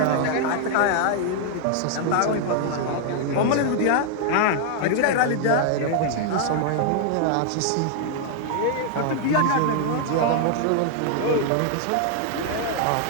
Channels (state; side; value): different; both; correlation 0.00